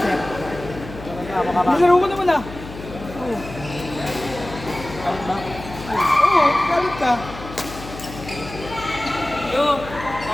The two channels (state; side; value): noise; left; hum, 13 dB below the sound